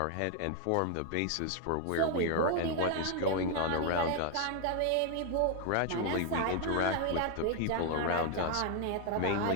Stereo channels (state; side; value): different; both; correlation 0.01